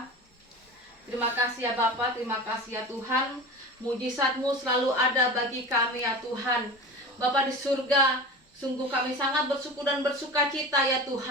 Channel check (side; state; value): both; normal; correlation 0.31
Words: Terima kasih ya Bapa, terima kasih ya Tuhan. Mujizat-Mu selalu ada bagi kami ya Tuhan. Bapa di surga, sungguh kami sangat bersyukur dan bersuka cita ya